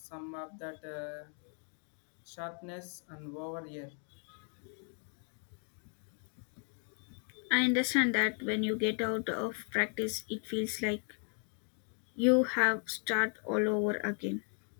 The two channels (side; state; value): right; quieter; 39.5 dB